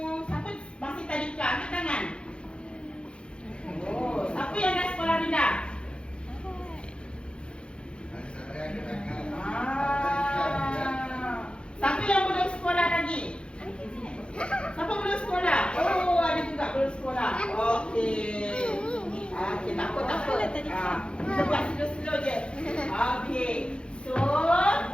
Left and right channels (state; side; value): late; right; 0.056 ms